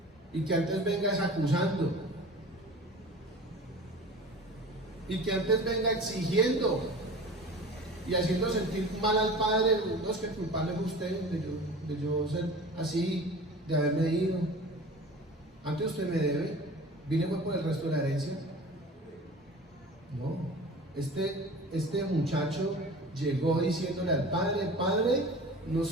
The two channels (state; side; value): normal; both; correlation 0.39